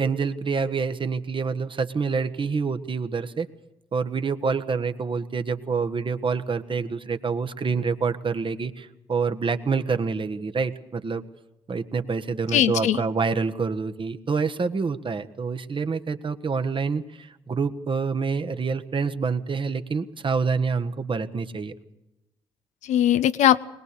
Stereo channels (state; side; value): normal; both; correlation 0.59